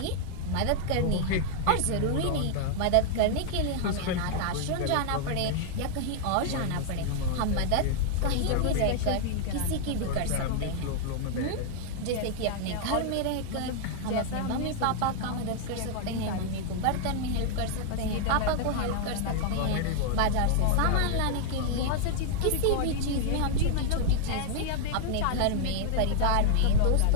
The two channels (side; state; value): both; different; correlation 0.00